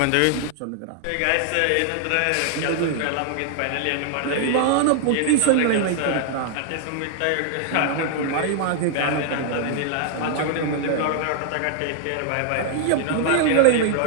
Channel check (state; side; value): different; both; correlation 0.00